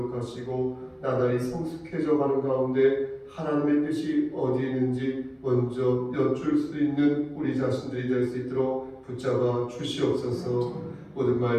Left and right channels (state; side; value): identical; both; correlation 1.00